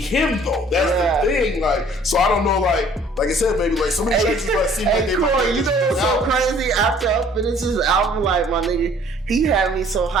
though. That's the thing. Like, so I don't know, like I said, maybe like some of these tracks seem like they Corey, you know what's so crazy? After I finished his album, like my nigga, he had me so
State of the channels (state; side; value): normal; both; correlation 0.55